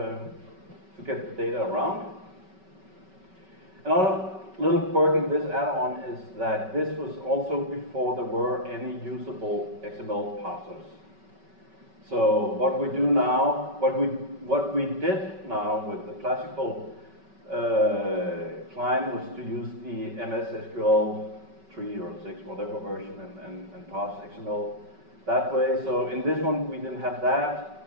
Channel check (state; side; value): late; left; 5.3 ms